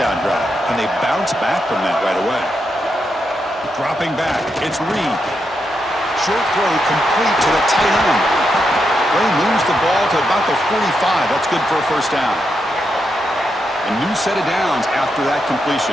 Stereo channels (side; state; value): both; normal; correlation 0.83